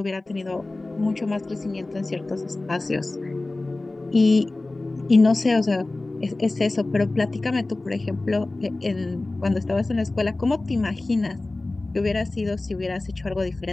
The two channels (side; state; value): right; quieter; 3.0 dB